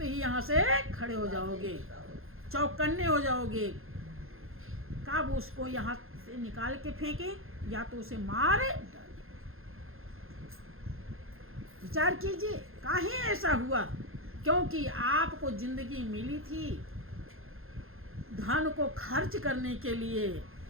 ही यहाँ से खड़े हो जाओगे, चौकन्ने हो जाओगे। कब उसको यहाँ से निकाल के फेंके या तो उसे मार डाले। विचार कीजिए काहे ऐसा हुआ? क्योंकि आपको जिंदगी मिली थी धन को खर्च करने के लिए,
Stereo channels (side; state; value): left; late; 0.61 ms